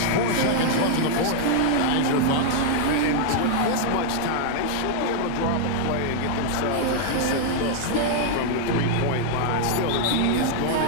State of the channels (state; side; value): different; both; correlation -0.01